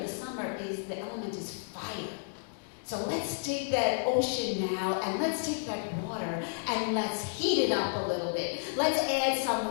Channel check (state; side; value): silent; right; digital silence